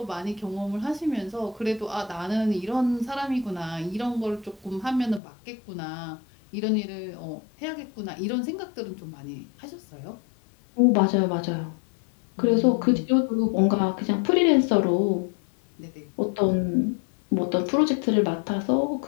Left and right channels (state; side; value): drops out; right; at 5.2 s